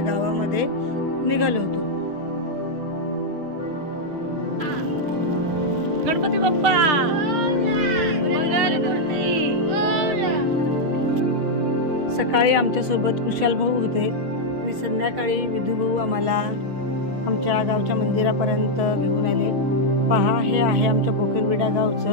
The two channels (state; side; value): late; left; 6.3 ms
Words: निघालो होतो. गणपती बाप्पा मंगलमूर्ती. सकाळी आमच्यासोबत कुशाल भाऊ होते आणि संध्याकाळी विधू भाऊ आम्हाला आमच्या गावच्या मंदिरापर्यंत घेऊन आले. पहा, हे आहे आमच्या बोकेरविडा